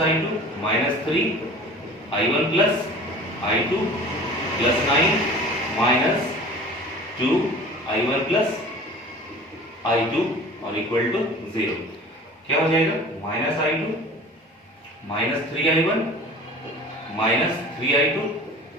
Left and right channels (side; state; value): both; normal; correlation 0.41